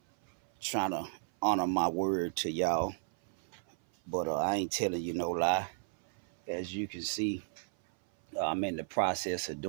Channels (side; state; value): left; silent; 55 dB below the other